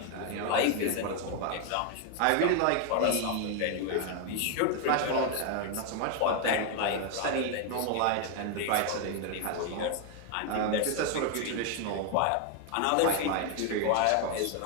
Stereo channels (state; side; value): different; both; correlation 0.01